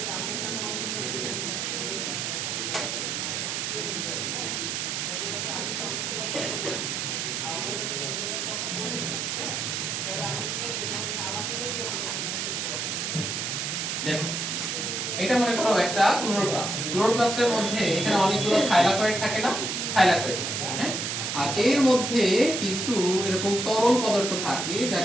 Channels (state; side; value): noise; right; hiss, 2 dB below the sound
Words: দেখো এটা মনে করো একটা ক্লোরোপ্লাস্ট। ক্লোরোপ্লাস্টের মধ্যে এখানে অনেকগুলো থাইলাকয়েড থাকে না? থাইলাকয়েড থাকে, হ্যাঁ? আর এর মধ্যে কিছু এরকম তরল পদার্থ থাকে